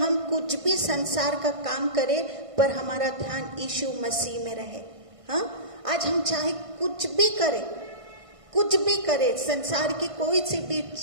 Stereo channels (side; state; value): left; late; 1.5 ms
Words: कुछ भी संसार का काम करें पर हमारा ध्यान यीशु मसीह में रहे। हाँ, आज हम चाहे कुछ भी करें, संसार की कोई सी भी